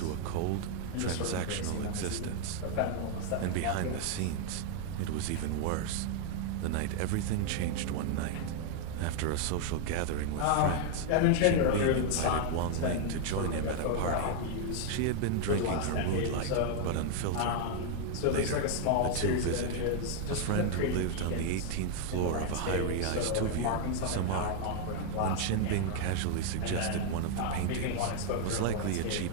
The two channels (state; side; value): different; both; correlation 0.00